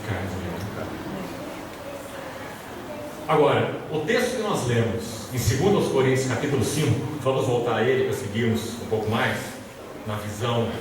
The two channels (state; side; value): identical; both; correlation 1.00